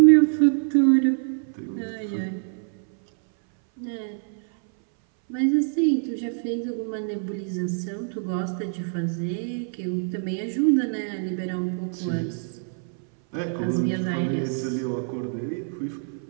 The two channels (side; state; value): left; silent; 60 dB below the other